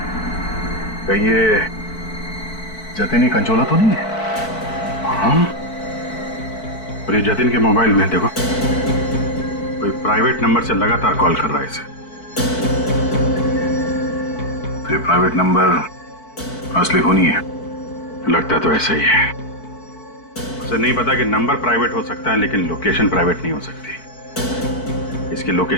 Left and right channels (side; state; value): right; late; 4.5 ms